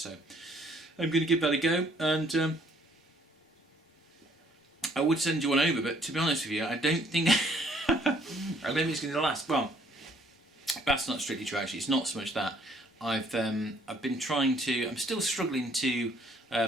I'm going to give that a go, and I would send you one over, but to be honest with you, I don't think it's going to last. Well, that's not strictly true actually. It's not so much that. I've been trying to. I'm still struggling to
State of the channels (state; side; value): normal; both; correlation 0.63